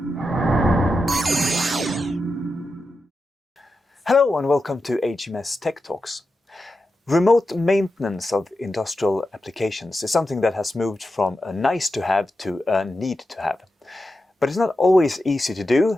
Hello and welcome to HMS Techtalks. Remote maintenance of industrial applications is something that has moved from a nice to have to a need to have. But it's not always easy to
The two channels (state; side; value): normal; both; correlation 0.90